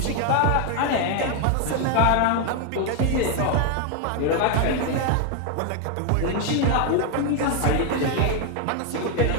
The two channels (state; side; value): different; both; correlation 0.01